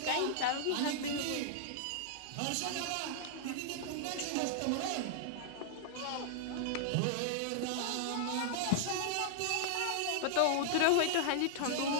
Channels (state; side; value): different; both; correlation -0.01